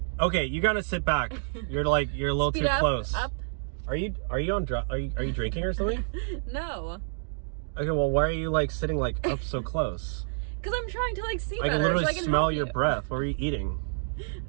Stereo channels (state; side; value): silent; left; digital silence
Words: Okay, you gotta sit back. You're a little too close. Up. Are you drinking or something? No. Okay, well, why are you like sitting like up so close? Because I'm trying to like see I better. can literally so I can smell help your you. breath. What are you eating?